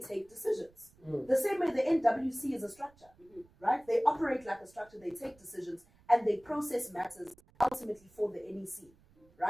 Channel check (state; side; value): noise; right; rumble, 29 dB below the sound